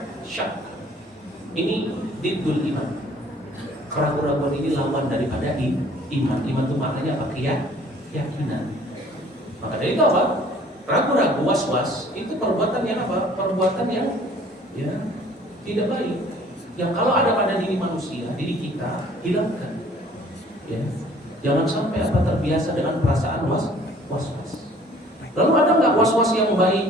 syak. Ini diddul iman. Keraguan-keraguan ini lawan daripada iman. Iman itu maknanya apa? Keyakinan. Maka dari itu apa? Ragu-ragu, was-was itu perbuatan yang apa? Perbuatan yang ya tidak baik. Yang kalau ada pada diri manusia, diri kita, hilangkan. Ya. Jangan sampai apa terbiasa dengan perasaan was-was. Lalu ada nggak was-was yang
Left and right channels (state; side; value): normal; both; correlation 0.55